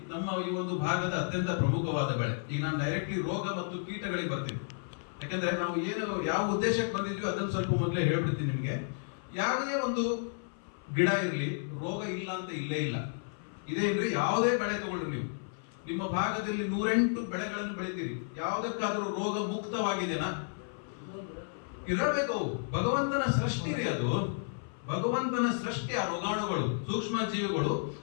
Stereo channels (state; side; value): silent; right; 56 dB below the other